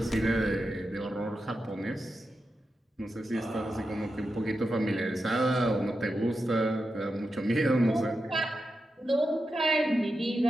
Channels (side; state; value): both; normal; correlation 0.89